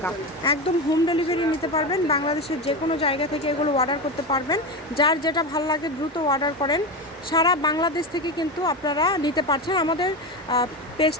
একদম হোম ডেলিভারি নিতে পারবেন। বাংলাদেশের যে কোনো জায়গা থেকে এগুলো অর্ডার করতে পারবেন। যার যেটা ভালো লাগে দ্রুত অর্ডার করেন। সারা বাংলাদেশ থেকে কিন্তু আপনারা নিতে পারছেন। আমাদের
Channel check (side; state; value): both; normal; correlation 0.18